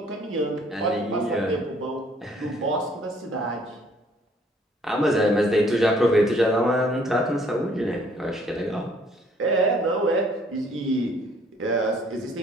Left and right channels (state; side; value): normal; both; correlation 0.61